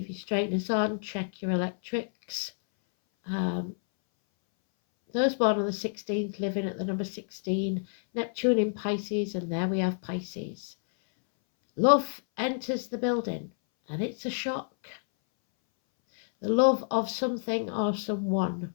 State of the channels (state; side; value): silent; right; 59 dB below the other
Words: your straighteners on, check your electrics. Those born on the 16th, living at the number 16, Neptune in Pisces, and there we have Pisces. Love enters the building. And it's a shock. The love of something or someone.